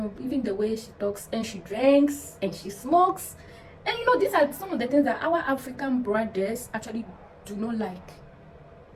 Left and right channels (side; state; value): both; identical; correlation 1.00